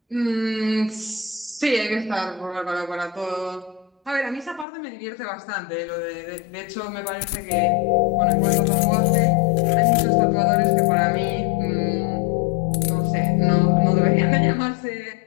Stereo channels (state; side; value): drops out; right; at 4.7 s